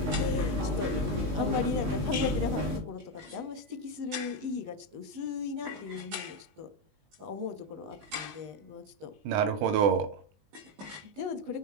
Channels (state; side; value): late; left; 20 ms